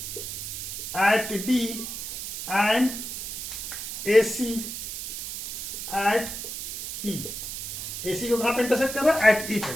at D and AC at E। AC को कहां पे इंटरसेक्ट कर रहा है? at E पे।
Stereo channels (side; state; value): right; noise; hiss, 6 dB below the sound